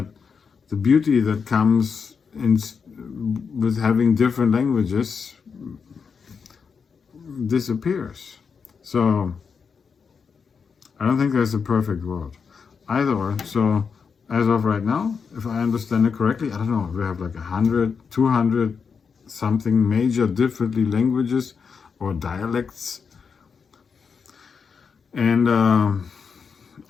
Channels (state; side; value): quieter; right; 5.9 dB